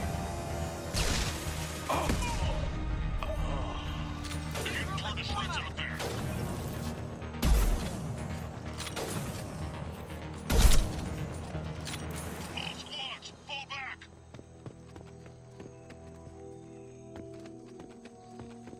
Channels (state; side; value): identical; both; correlation 1.00